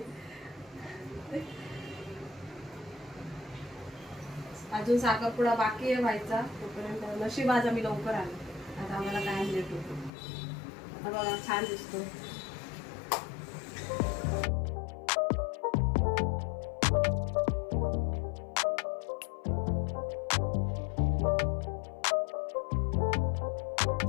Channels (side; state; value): right; drops out; at 10.1 s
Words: अजून साखरपुडा बाकी आहे व्हायचा. तोपर्यंत नशीब आज आम्ही लवकर आलो. आता आम्हाला काय लेट होतो. आता बघा, छान दिसतो.